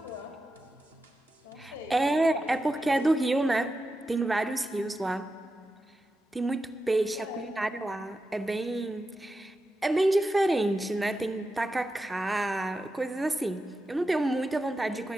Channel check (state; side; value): normal; both; correlation 0.90